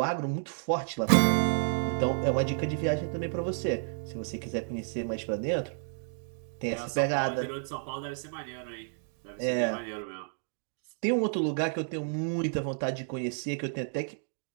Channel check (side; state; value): left; silent; digital silence